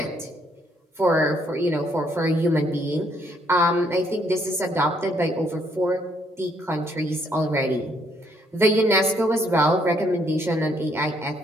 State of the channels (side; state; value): both; normal; correlation 0.69